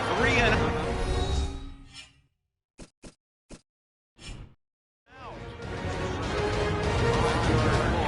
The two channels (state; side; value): identical; both; correlation 1.00